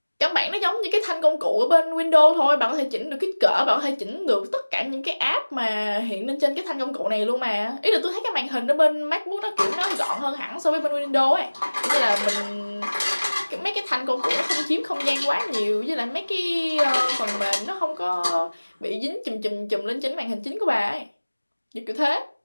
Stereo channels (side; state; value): both; inverted; correlation -1.00